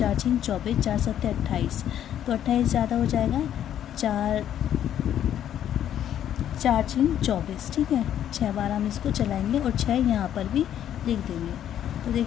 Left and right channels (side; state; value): right; quieter; 10.6 dB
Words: 6 24, 4 7 28, तो 28 ज़्यादा हो जाएगा, 4 6 24। ठीक है, 6 बार हम इसको चलाएंगे और 6 यहाँ पर भी लिख देंगे। तो